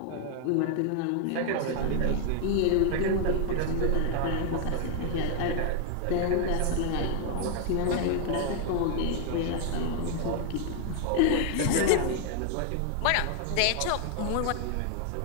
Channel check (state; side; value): different; both; correlation 0.00